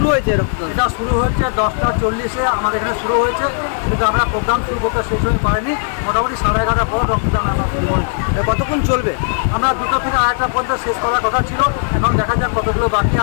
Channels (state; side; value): silent; right; 68 dB below the other